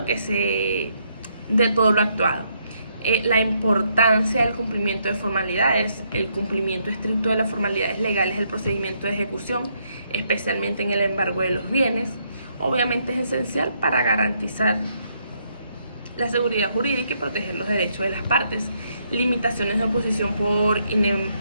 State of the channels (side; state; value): both; inverted; correlation -0.74